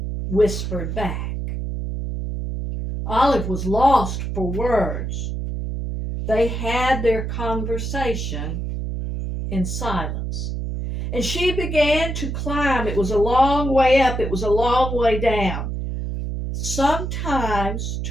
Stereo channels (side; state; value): right; noise; hum, 3 dB below the sound